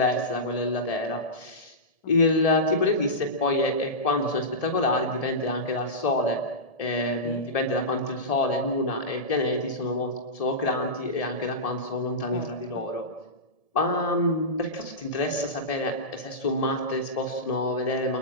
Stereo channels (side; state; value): right; late; 1.7 ms